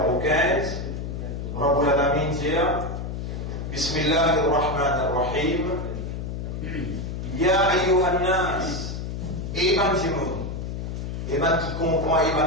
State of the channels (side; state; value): left; noise; hum, 5 dB below the sound